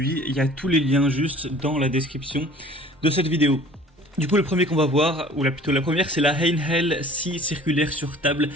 il y a tous les liens juste dans la description de cette vidéo. Du coup, le premier qu'on va voir, ou plutôt la première, c'est la Heinhell scie circulaire sur table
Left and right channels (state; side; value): normal; both; correlation 0.49